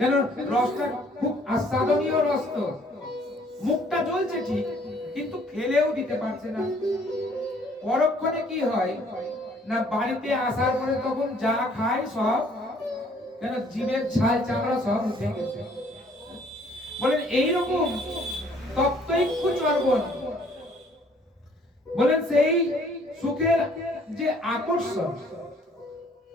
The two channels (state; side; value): normal; both; correlation 0.60